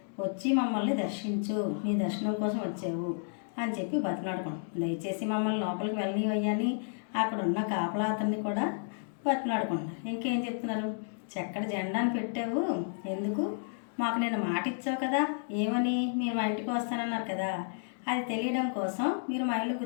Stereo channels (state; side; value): silent; right; digital silence